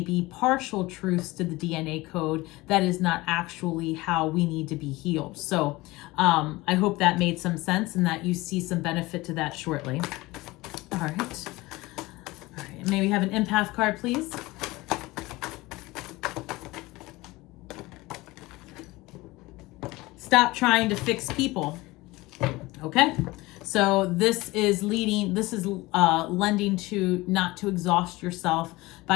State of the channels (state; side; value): quieter; right; 20.8 dB